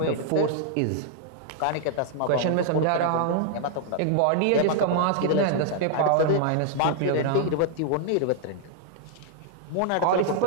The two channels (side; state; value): both; different; correlation -0.01